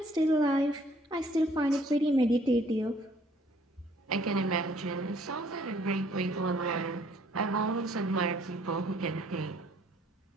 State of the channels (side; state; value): both; normal; correlation 0.61